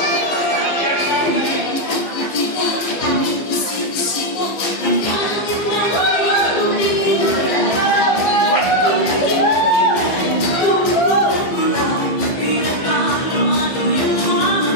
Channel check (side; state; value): right; late; 15 ms